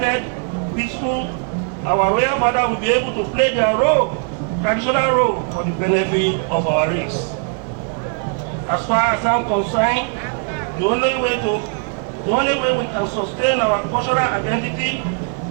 peaceful, our royal father will be able to play their role, traditional role, for the benefit of our race. As far as I'm concerned, the only way we can sustain our cultural identity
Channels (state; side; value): quieter; left; 39.1 dB